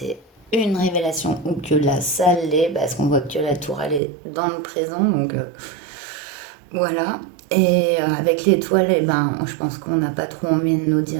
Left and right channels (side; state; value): left; drops out; at 4.0 s